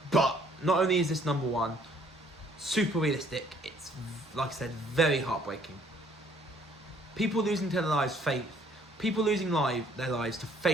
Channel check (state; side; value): normal; both; correlation 0.61